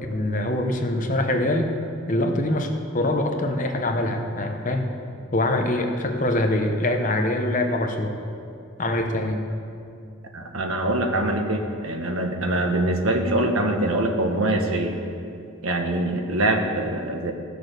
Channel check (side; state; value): both; normal; correlation 0.33